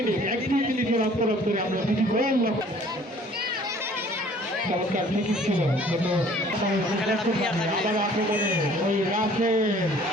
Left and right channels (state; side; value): normal; both; correlation 0.54